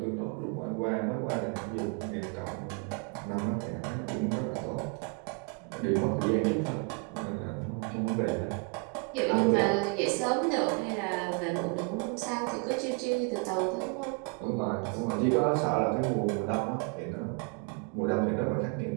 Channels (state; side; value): quieter; left; 35.3 dB